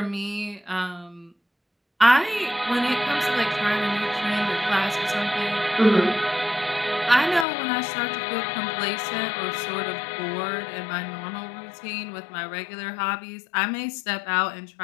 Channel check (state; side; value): drops out; right; at 7.5 s